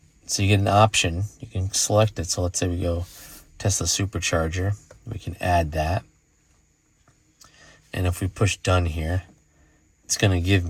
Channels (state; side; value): identical; both; correlation 1.00